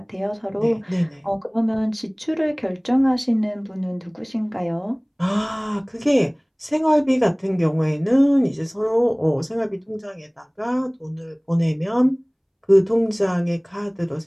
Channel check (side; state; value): both; identical; correlation 1.00